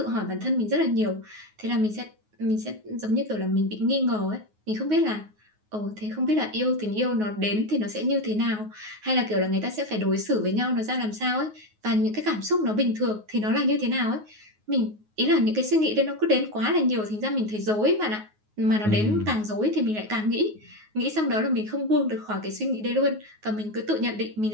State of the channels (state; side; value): late; left; 9.4 ms